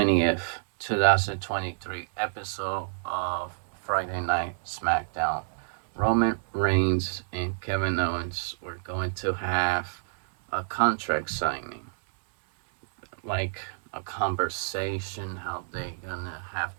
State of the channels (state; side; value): silent; left; digital silence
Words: 2023, episode of Friday Night SmackDown, Roman Reigns and Kevin Owens were going to have a contract signing, like a conversation how they gonna have